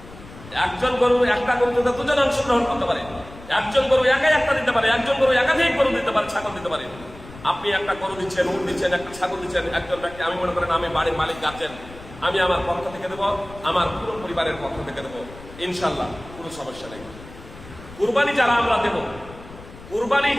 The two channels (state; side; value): noise; left; rumble, 18 dB below the sound